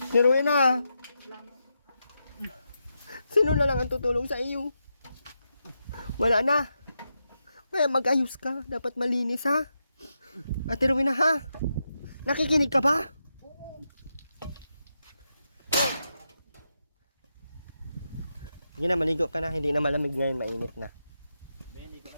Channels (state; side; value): inverted; both; correlation -0.86